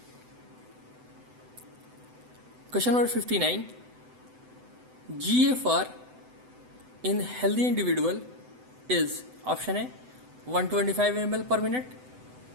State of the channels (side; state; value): left; late; 7.9 ms